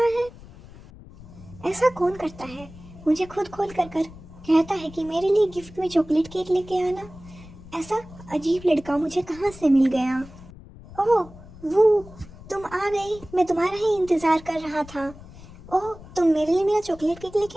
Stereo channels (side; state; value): left; noise; rumble, 18 dB below the sound